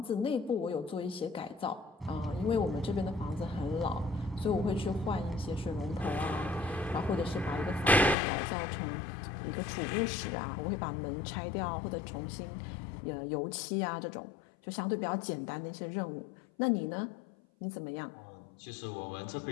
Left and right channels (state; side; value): drops out; right; at 8.2 s